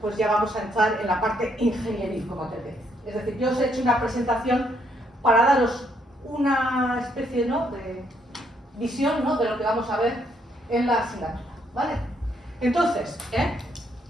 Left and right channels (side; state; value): both; normal; correlation 0.72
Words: ya vamos a entrar en la parte ingenieril, como te decía. Es decir, yo os he hecho una presentación para daros una especie, ¿no?, de visión, ¿no?, de lo que vamos a ver en la asignatura, ¿vale? Entonces,